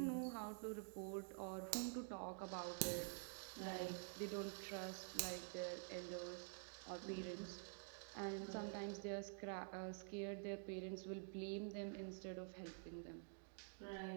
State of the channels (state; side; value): silent; left; digital silence